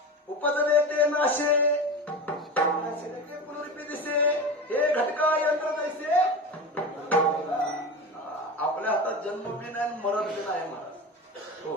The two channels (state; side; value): normal; both; correlation 0.27